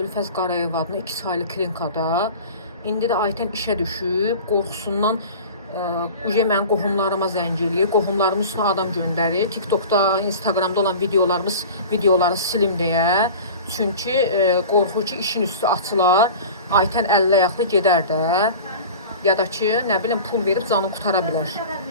Qarayev adına 2 saylı klinikada. İndi də Aytən işə düşüb, qorxusundan mənim qohumlarıma zəng eləyir. Qohumlarımın üstünə adam göndərir. TikTokda, Instagramda olan videoları silim deyə. Çünki qorxur ki, işin üstü açılar. Aytən əllə ayaqlı gedər də. Ya da ki, nə bilim, pul verib canını qutara bilər.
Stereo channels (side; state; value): both; inverted; correlation -0.37